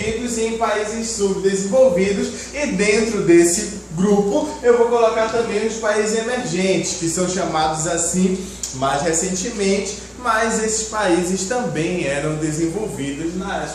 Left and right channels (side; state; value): both; identical; correlation 1.00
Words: e em países subdesenvolvidos, e dentro desse grupo eu vou colocar também os países emergentes, que são chamados assim mais recentemente, mas esses países também eram subdesenvolvidos,